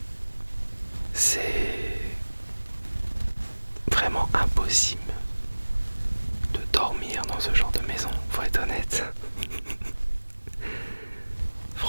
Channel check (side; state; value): both; inverted; correlation -1.00